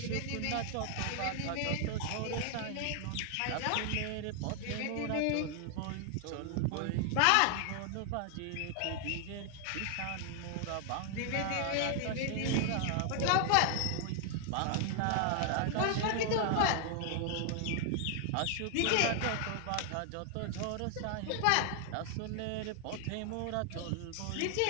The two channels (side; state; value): both; different; correlation 0.00